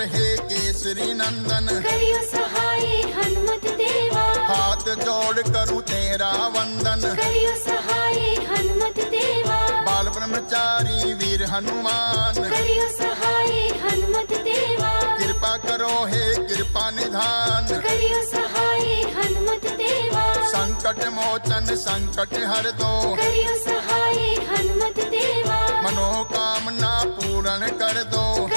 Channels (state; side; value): inverted; both; correlation -1.00